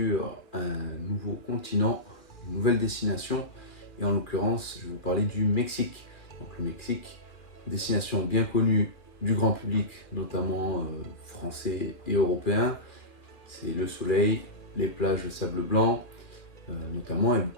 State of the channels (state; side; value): late; right; 2.4 ms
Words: un nouveau continent, une nouvelle destination. Et en l'occurrence, je vais vous parler du Mexique. Donc le Mexique, destination bien connue du grand public, notamment français et européen. C'est le soleil, les plages de sable blanc, notamment, et